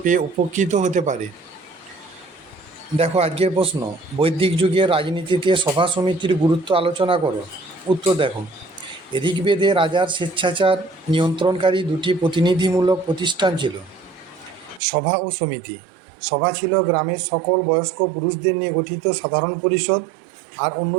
পেয়ে উপকৃত হতে পারে। দেখো, আজকের প্রশ্ন, বৈদিক যুগের রাজনীতিতে সভা সমিতির গুরুত্ব আলোচনা করো। উত্তর দেখো, ঋগ্বেদে রাজার স্বেচ্ছাচার নিয়ন্ত্রণকারী দুটি প্রতিনিধিমূলক প্রতিষ্ঠান ছিল, সভা ও সমিতি। সভা ছিল গ্রামের সকল বয়স্ক পুরুষদের নিয়ে গঠিত সাধারণ পরিষদ, আর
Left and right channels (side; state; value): left; drops out; at 14.8 s